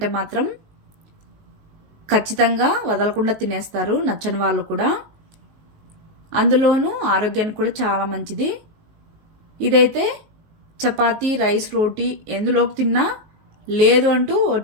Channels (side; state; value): left; late; 19 ms